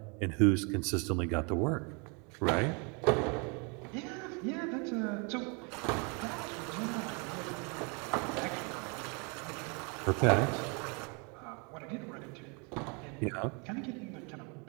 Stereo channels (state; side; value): quieter; left; 33.3 dB